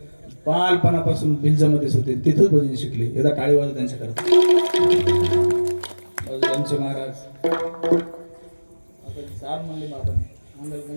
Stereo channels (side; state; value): both; inverted; correlation -1.00